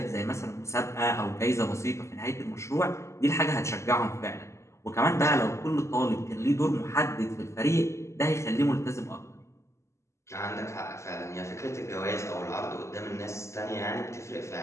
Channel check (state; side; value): late; right; 0.13 ms